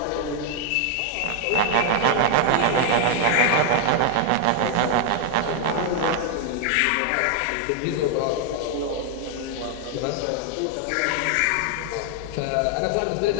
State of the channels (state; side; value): different; both; correlation 0.00